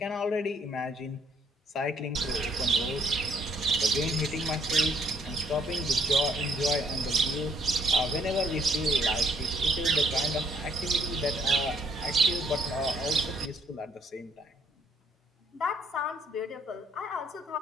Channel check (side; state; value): both; normal; correlation 0.65